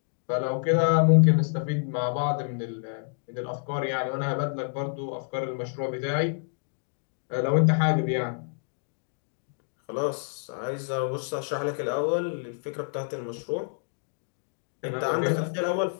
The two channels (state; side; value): silent; right; digital silence